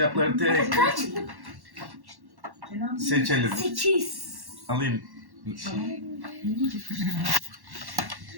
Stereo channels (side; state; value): left; late; 1.1 ms